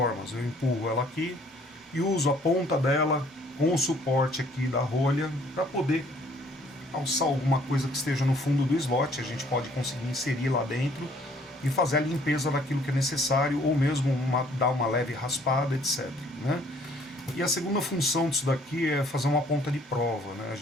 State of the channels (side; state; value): both; normal; correlation 0.60